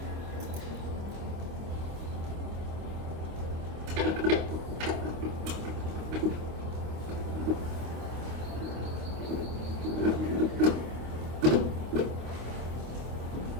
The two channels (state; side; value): late; left; 26 ms